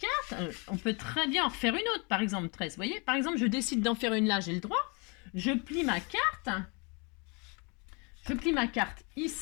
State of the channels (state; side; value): quieter; right; 32.1 dB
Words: on peut très bien en refaire une autre, par exemple 13, vous voyez, par exemple, je décide d'en faire une là, j'ai le droit, je plie ma carte